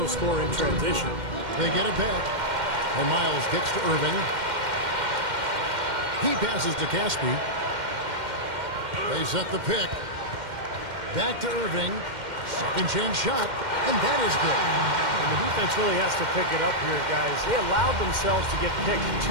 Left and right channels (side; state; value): left; late; 2.1 ms